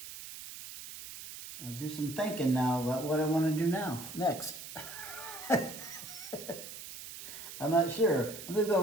I'll do some thinking now about what I want to do next. I'm not sure. I'm just gonna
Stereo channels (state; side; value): noise; right; hiss, 12 dB below the sound